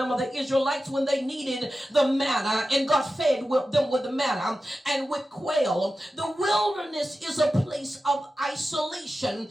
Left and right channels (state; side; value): normal; both; correlation 0.93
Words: the Israelites when they needed the manna and God fed them with the manna and with quail. The wilderness is a place of isolation.